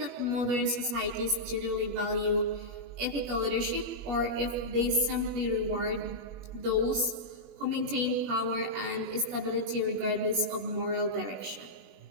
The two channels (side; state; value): left; late; 21 ms